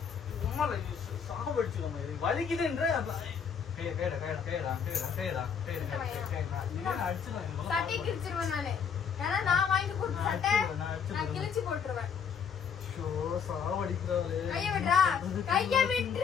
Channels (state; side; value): quieter; right; 7.0 dB